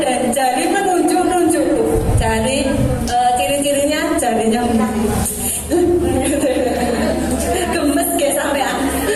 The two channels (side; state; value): both; identical; correlation 1.00